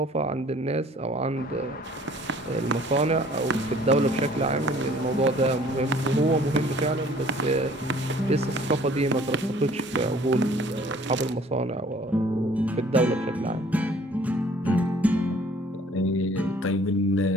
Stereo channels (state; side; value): normal; both; correlation 0.54